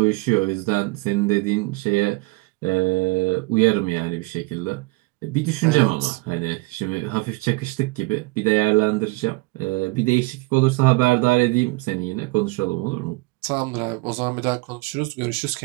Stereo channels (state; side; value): quieter; left; 24.1 dB